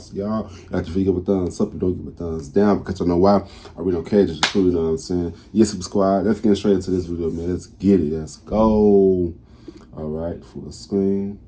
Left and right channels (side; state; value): both; identical; correlation 1.00